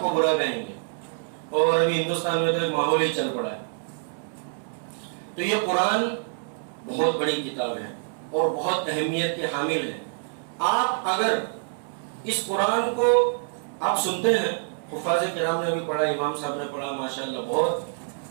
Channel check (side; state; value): left; silent; 61 dB below the other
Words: برا کہیں گے. اور ابھی ہندوستان میں تو ایک ماحول ہی چل پڑا ہے. تو یہ قرآن بہت بڑی کتاب ہے اور بہت اہمیت کے حامل ہے. آپ اگر اس قرآن کو آپ سنتے ہیں، حفاظ کرام نے بھی پڑھا، امام صاحب نے پڑھا، ماشاءاللہ